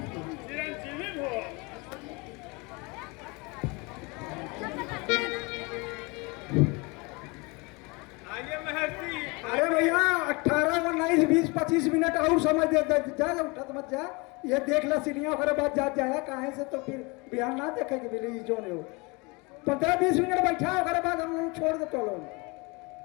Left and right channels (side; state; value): right; quieter; 27.7 dB